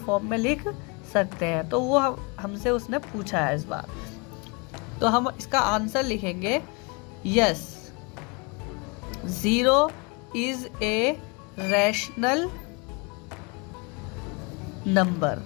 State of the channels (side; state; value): right; quieter; 30.8 dB